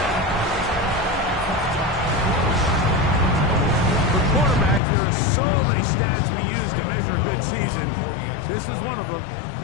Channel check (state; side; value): drops out; right; at 4.8 s